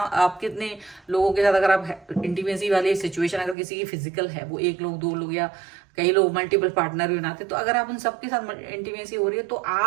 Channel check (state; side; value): drops out; left; at 3.6 s